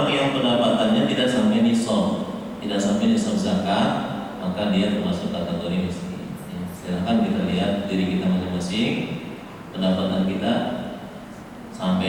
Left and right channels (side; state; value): both; identical; correlation 1.00